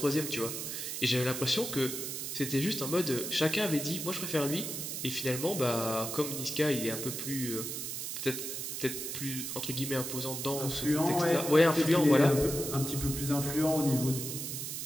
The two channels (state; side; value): noise; right; hiss, 5 dB below the sound